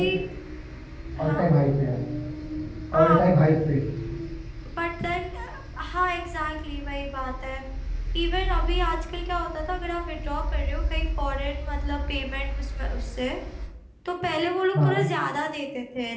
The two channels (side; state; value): both; identical; correlation 1.00